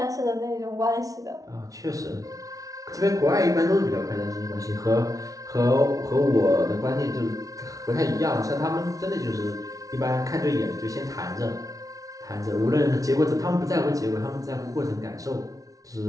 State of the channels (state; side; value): late; left; 0.17 ms